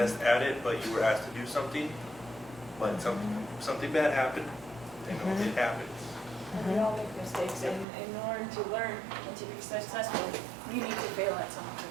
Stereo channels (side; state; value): left; drops out; at 7.9 s